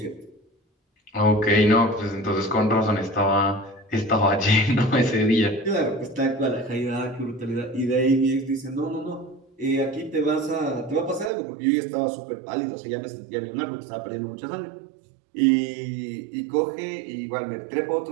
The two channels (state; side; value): drops out; left; at 11.3 s